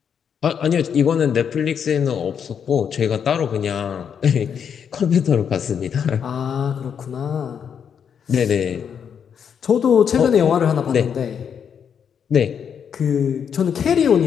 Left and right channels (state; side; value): quieter; right; 7.6 dB